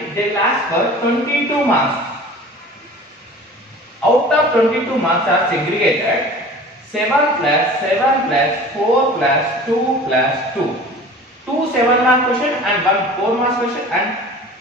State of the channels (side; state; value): both; normal; correlation 0.42